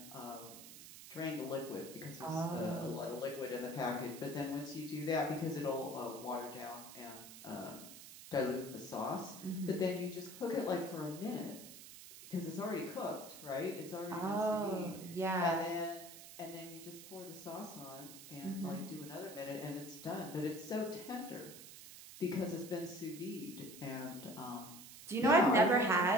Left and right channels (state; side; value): noise; right; hiss, 14 dB below the sound